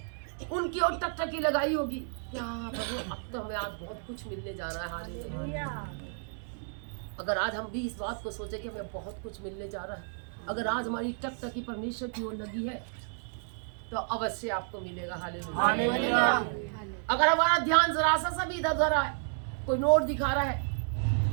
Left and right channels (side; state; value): left; silent; 57 dB below the other